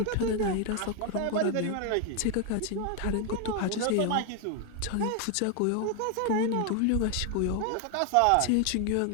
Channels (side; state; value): both; different; correlation 0.00